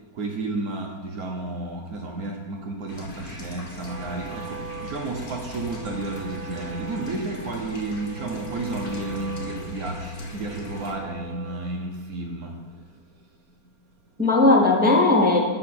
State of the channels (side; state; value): left; late; 4.4 ms